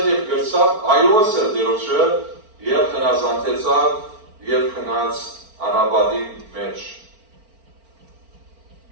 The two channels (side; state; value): left; late; 4.4 ms